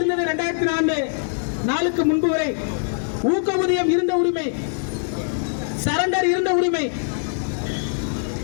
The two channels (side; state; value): right; silent; 64 dB below the other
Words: 2004 முன்பு வரை, ஊக்கஊதியம் இருந்த உரிமை, சரண்டர் இருந்த உரிமை